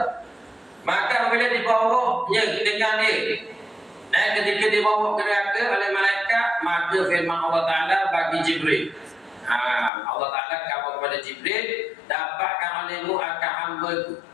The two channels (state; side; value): drops out; right; at 9.9 s